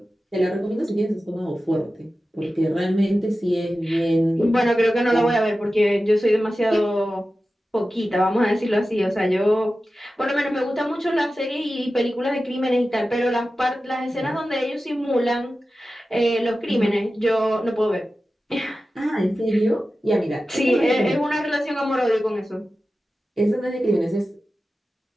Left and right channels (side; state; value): both; normal; correlation 0.94